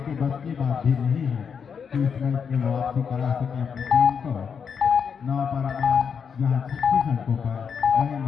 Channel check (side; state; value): right; quieter; 6.6 dB